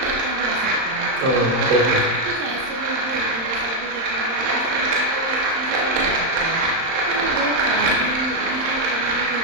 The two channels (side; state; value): left; late; 31 ms